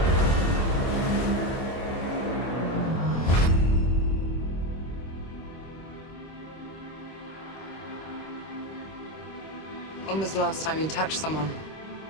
When was the last time you touched someone?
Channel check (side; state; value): right; late; 26 ms